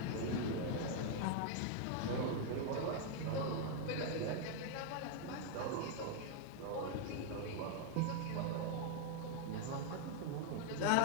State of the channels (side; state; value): both; different; correlation 0.00